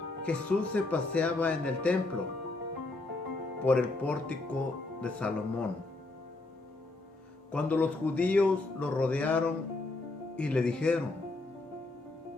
Jesús se paseaba en el templo por el pórtico de Salomón, cuando los judíos lo rodearon y le dijeron:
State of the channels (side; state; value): right; quieter; 3.1 dB